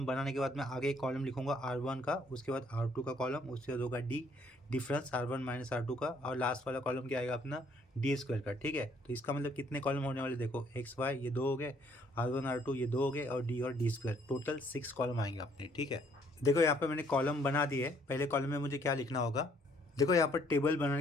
बनाने के बाद मैं आगे एक कॉलम लिखूंगा R1 का, उसके बाद R2 का कॉलम, उसके बाद होगा D difference R1 minus R2 का, और लास्ट वाला कॉलम क्या आएगा अपना डी स्क्वायर का। ठीक है, तो इसका मतलब कितने कॉलम होने वाले, देखो एक्स वाई ये 2 हो गए, R1 R2 ये 2 हो गए, और डी स्क्वायर, टोटल 6 कॉलम आएंगे अपने। ठीक है, देखो यहाँ पर मैंने कॉलम बना दिए। पहले कॉलम में मुझे क्या लिखना होगा, देखो यहाँ पर टेबल बनाने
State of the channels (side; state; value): both; normal; correlation 0.64